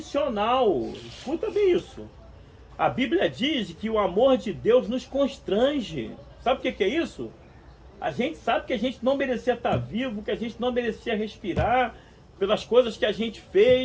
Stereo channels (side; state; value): both; identical; correlation 1.00